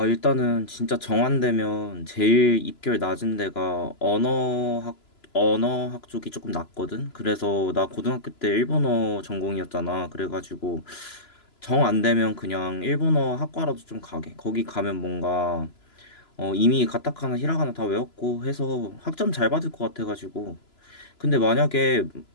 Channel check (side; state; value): right; late; 3.0 ms